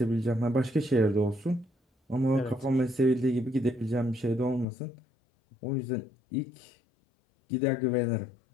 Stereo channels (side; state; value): right; drops out; at 4.7 s